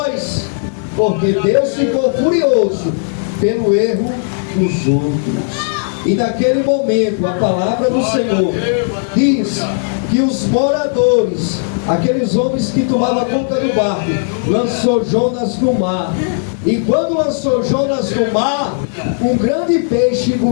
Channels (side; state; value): right; silent; digital silence